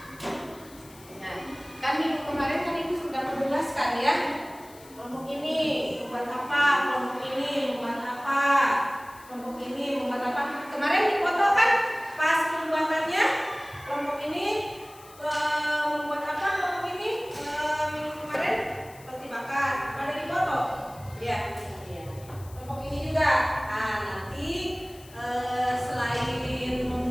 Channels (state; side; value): noise; left; hiss, 22 dB below the sound